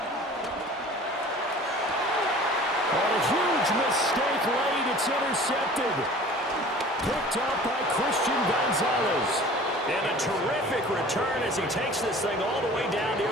And a huge mistake late. It's intercepted. Picked up by Christian Gonzalez. And a terrific return as he takes this thing all the way down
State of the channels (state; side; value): normal; both; correlation 0.45